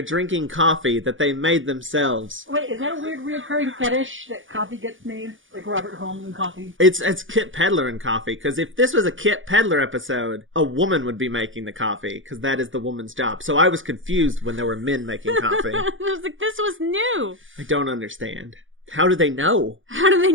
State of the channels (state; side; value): late; left; 0.57 ms